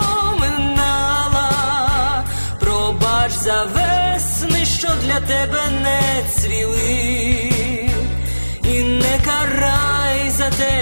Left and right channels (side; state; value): both; inverted; correlation -1.00